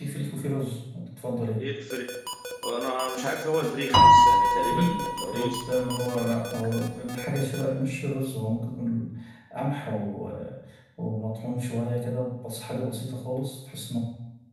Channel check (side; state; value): both; identical; correlation 1.00